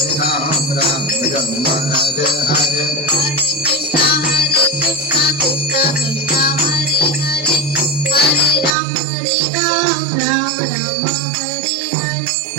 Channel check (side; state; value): left; drops out; at 8.8 s